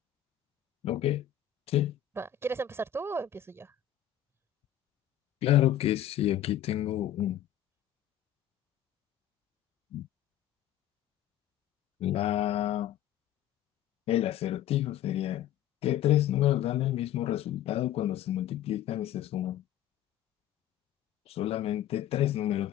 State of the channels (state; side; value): quieter; right; 11.3 dB